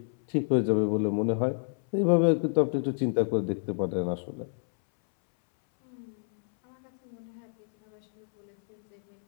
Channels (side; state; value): right; silent; 59 dB below the other